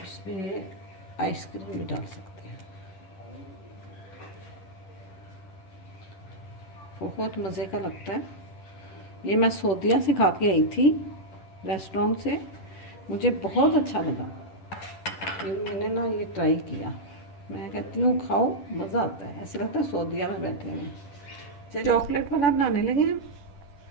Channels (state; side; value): late; right; 10 ms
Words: इसमें आइसक्रीम भी डाल सकते हैं। बहुत मज़े का लगता है। ये मैं सऊदीया से खा के आई थी रेस्टोरेंट से, मुझे बहुत अच्छा लगा। मैंने ना ये ट्राई किया, मैं कहती हूँ खाओ, मज़ा आता है, ऐसा लगता है सऊदीया में बैठे हैं। चलिए चॉकलेट वाला बनाने लगे हैं।